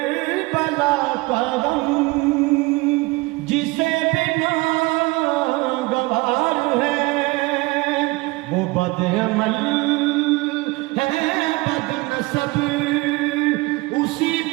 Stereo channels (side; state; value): left; quieter; 23.1 dB